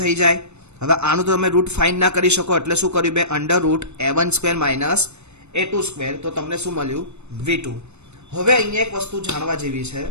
થઈ જાય. હવે આનું તો તમે રૂટ ફાઇન્ડ ના કરી શકો એટલે શું કર્યું, બે under route a1 square minus a2 square તો તમને શું મળ્યું, v2. હવે અહીંયા એક વસ્તુ જાણવા જેવી છે,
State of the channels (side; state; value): left; late; 0.81 ms